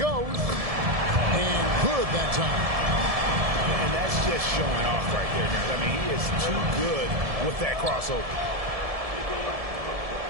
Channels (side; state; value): left; late; 1.7 ms